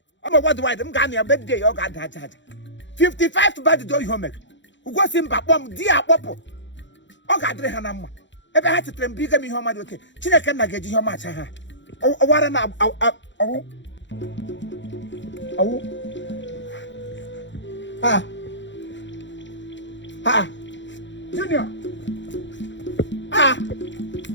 I'm what do I do? I'm a birthday, you got that. 55 for bad day, you make. Who was in Papom, dear Popo? Oh, God, Hanama. Ever had to train bigger me home. Okay, China cannot get you much. Oh, what an Junior.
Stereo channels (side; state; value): right; late; 0.54 ms